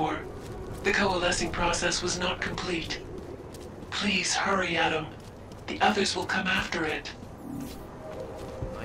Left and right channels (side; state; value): both; identical; correlation 1.00